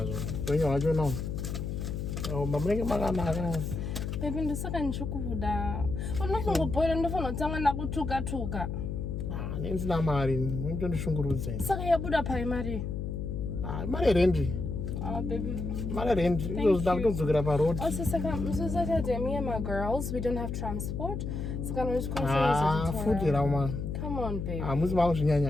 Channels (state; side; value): noise; left; hum, 4 dB below the sound